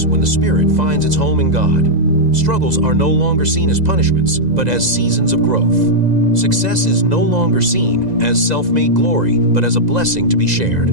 when the spirit finds its home in God. Struggles are no longer seen as punishments, but as seasons of growth. Success is no longer seen as self-made glory, but as a blessing to be shared.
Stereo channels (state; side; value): late; left; 2.0 ms